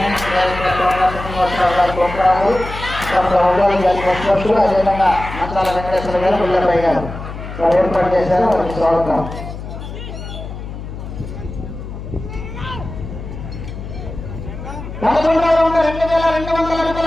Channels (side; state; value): left; noise; hum, 10 dB below the sound